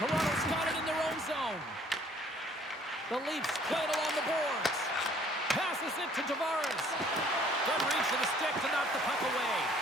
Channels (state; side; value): normal; both; correlation 0.58